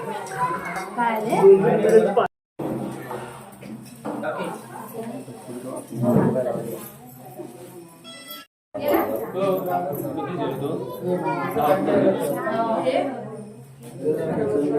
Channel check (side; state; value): both; identical; correlation 1.00